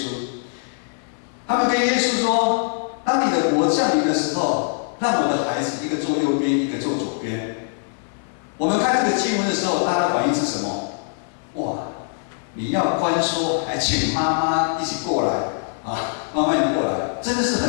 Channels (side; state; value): right; silent; 64 dB below the other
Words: 他们跟耶稣说：“当你的国降临的时候，让我的孩子一个坐右边，一个坐左边。”我们看这个经文的时候，大家的反应是什么？哇！你要关说，还请妈妈一起过来啊！妈妈你过来，真的是